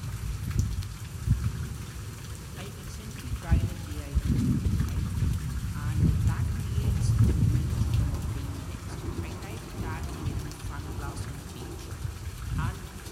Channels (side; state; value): both; identical; correlation 1.00